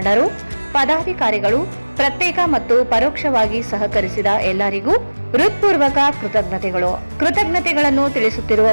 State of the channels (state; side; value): inverted; both; correlation -1.00